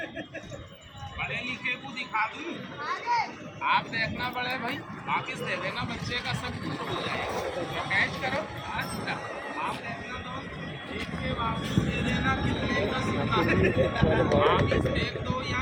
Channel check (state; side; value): identical; both; correlation 1.00